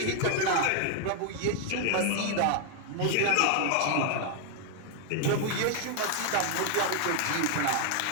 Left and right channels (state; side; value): different; both; correlation 0.00